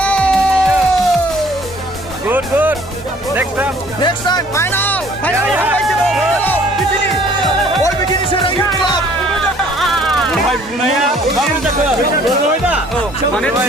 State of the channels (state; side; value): normal; both; correlation 0.57